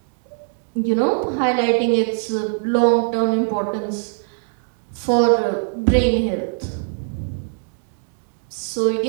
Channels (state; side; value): silent; left; digital silence